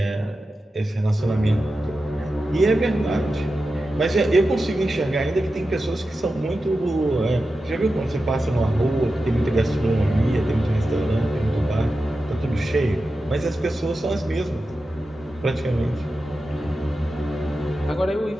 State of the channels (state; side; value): normal; both; correlation 0.92